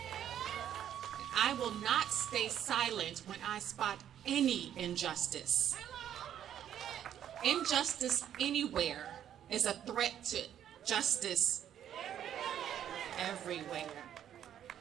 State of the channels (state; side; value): quieter; left; 10.2 dB